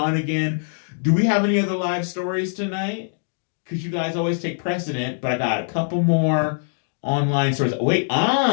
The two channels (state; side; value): silent; right; digital silence